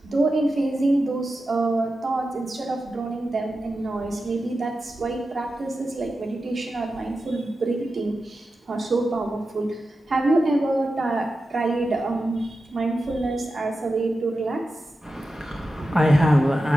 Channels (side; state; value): both; normal; correlation 0.91